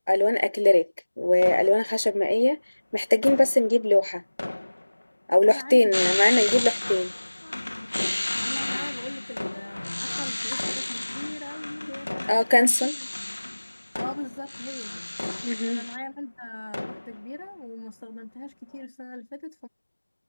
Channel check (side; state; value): both; inverted; correlation -1.00